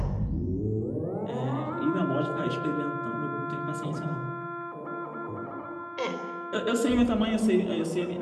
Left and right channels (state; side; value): identical; both; correlation 1.00